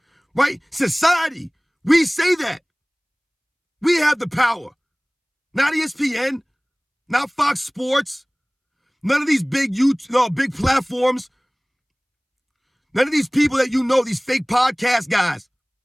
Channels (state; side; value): identical; both; correlation 1.00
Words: right? Society, we say that. We have the power. Not ESPN, not Fox Sports, none of these big big platforms, none of these people that these fake podcast guys.